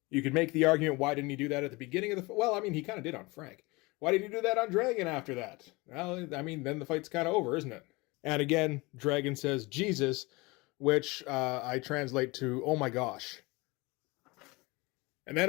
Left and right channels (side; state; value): right; quieter; 24.3 dB